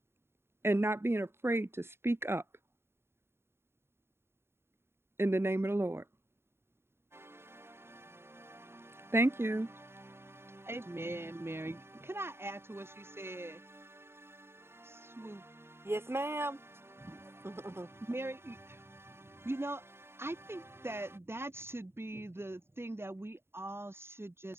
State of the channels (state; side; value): late; left; 0.12 ms